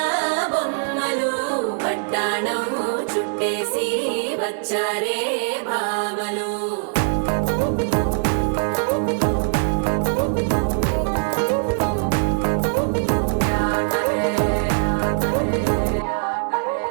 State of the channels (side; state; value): left; silent; digital silence